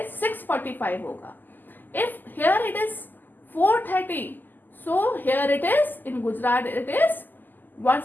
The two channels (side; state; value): right; late; 0.088 ms